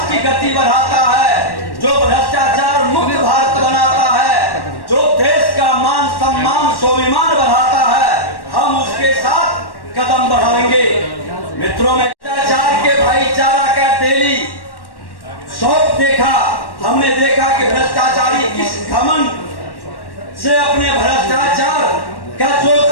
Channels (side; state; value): right; late; 1.1 ms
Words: की गति बढ़ाता है, जो भ्रष्टाचार मुक्त भारत बनाता है, जो देश का मान सम्मान स्वाभिमान बढ़ाता है, हम उसके साथ कदम बढ़ाएंगे। मित्रों, में भ्रष्टाचार के भाईचारा का डेली शौक देखा। हमने देखा कि भ्रष्टाचारी किस घमंड से अपने भ्रष्टाचार का जो